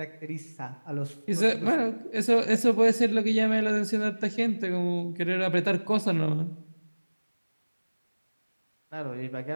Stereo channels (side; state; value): both; inverted; correlation -1.00